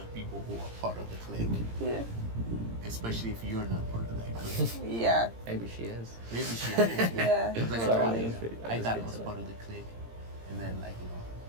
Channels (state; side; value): late; left; 17 ms